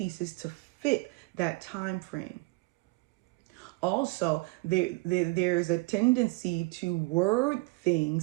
to fit that time frame. Also, there's a tendency to word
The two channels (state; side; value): quieter; left; 25.8 dB